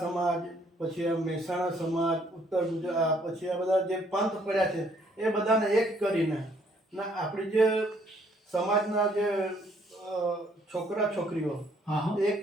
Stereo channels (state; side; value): normal; both; correlation 0.65